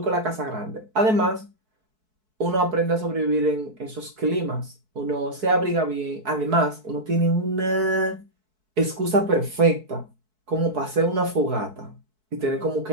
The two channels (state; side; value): late; left; 4.6 ms